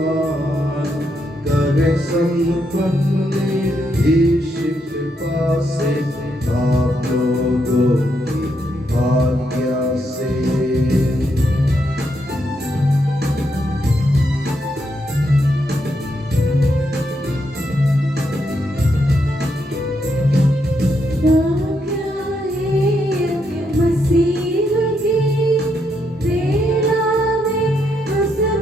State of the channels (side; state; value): both; normal; correlation 0.79